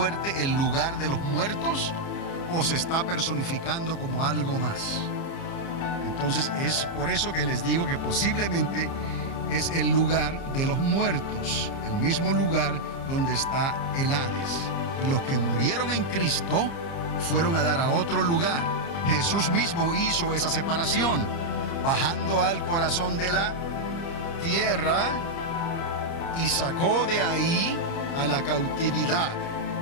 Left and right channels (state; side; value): late; right; 30 ms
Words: el lugar de los muertos o se está personificando como algo más? Entonces es por eso que les digo que posiblemente es el lugar de los muertos, el mismo lugar donde está el Hades. Y los que murieron en Cristo fueron a dar a otro lugar, Jesús mismo hizo esa separación, bajando al corazón de la tierra y sacó de ahí a la cautividad.